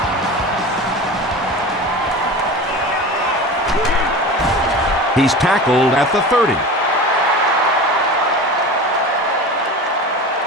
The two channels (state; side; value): normal; both; correlation 0.32